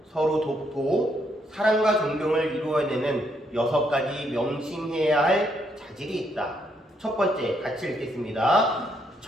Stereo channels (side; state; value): both; normal; correlation 0.74